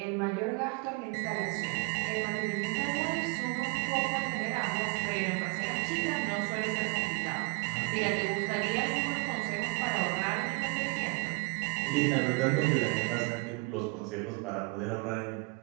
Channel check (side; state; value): left; quieter; 28.9 dB